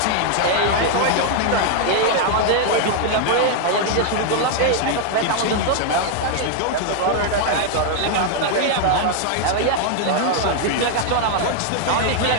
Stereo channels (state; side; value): different; both; correlation 0.00